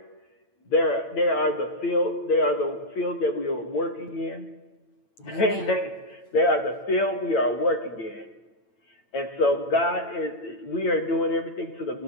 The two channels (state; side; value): late; right; 8.9 ms